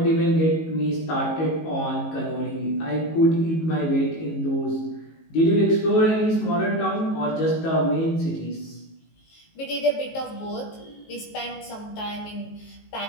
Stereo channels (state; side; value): late; right; 19 ms